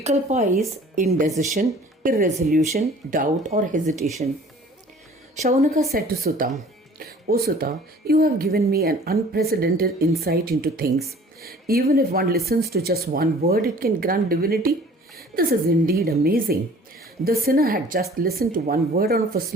is indecision, irresolution, doubt, or hesitation. Shaunaka said to Sutta, O Sutta, you have given me an unprecedented insight into things. Even if one listens to just one word, it can grant divinity. This is indeed amazing. The sinner had just listened to one word of a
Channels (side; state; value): both; normal; correlation 0.50